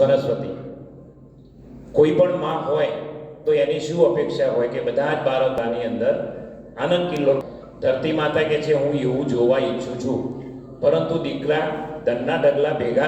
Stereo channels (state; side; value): identical; both; correlation 1.00